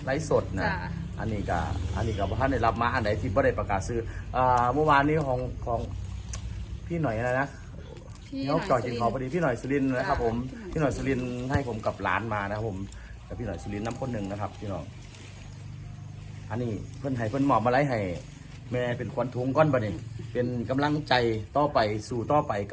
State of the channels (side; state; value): both; identical; correlation 1.00